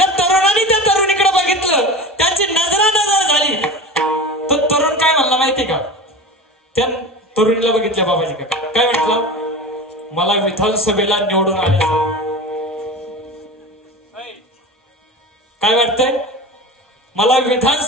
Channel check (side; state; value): both; normal; correlation 0.31